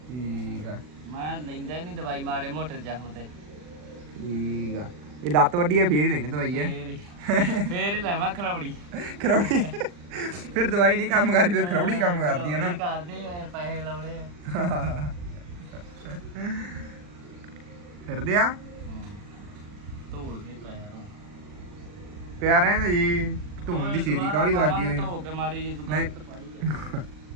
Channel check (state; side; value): late; left; 40 ms